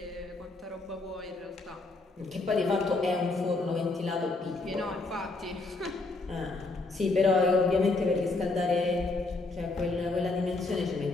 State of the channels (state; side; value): quieter; right; 3.3 dB